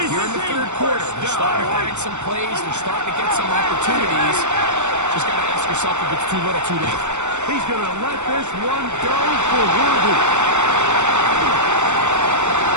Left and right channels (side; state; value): left; late; 0.84 ms